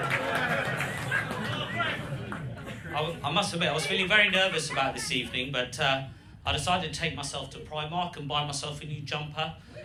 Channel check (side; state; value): both; identical; correlation 1.00